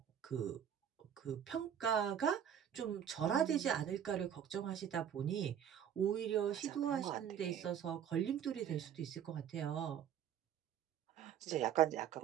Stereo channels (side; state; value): left; quieter; 9.1 dB